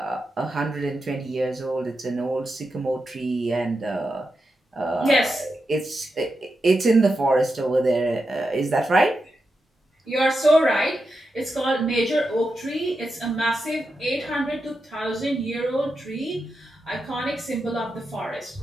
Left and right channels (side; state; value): both; normal; correlation 0.88